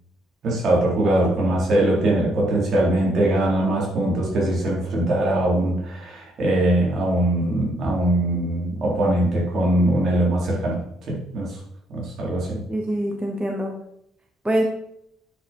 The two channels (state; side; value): normal; both; correlation 0.73